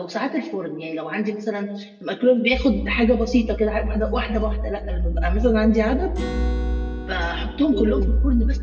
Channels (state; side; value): identical; both; correlation 1.00